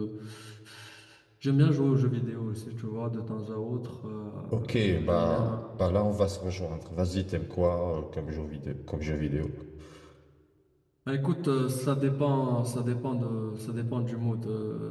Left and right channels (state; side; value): identical; both; correlation 1.00